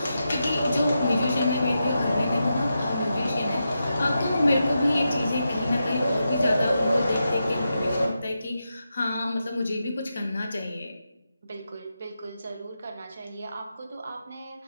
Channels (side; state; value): both; inverted; correlation -0.88